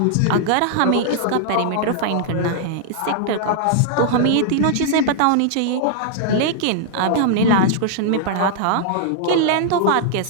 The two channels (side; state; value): both; different; correlation -0.01